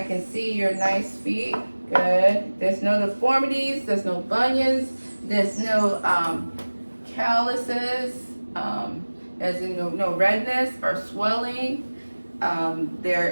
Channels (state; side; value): inverted; both; correlation -1.00